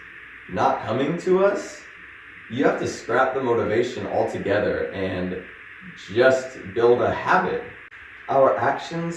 not coming to us, you have to scrap the motivation altogether and just build a habit. Our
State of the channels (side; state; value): both; identical; correlation 1.00